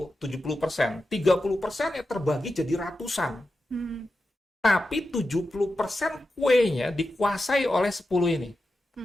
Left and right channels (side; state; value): both; normal; correlation 0.91